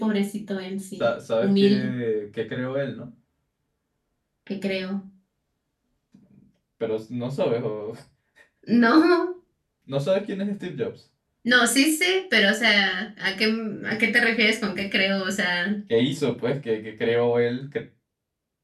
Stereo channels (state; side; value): identical; both; correlation 1.00